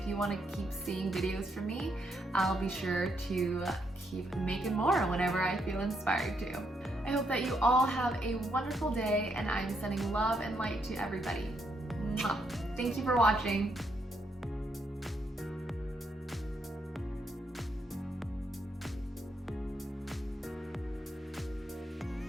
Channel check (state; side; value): normal; both; correlation 0.77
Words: you want to keep seeing videos from me. I'll be sure to keep making more whenever I feel inspired to. I hope that you all have a wonderful day, and I'm sending love and light to everybody. Mwah. Thank you for watching.